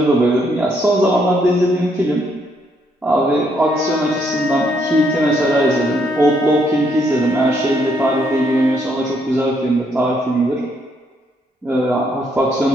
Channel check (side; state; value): both; normal; correlation 0.72